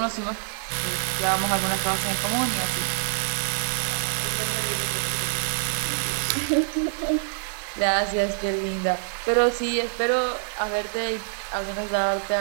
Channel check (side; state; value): left; silent; 58 dB below the other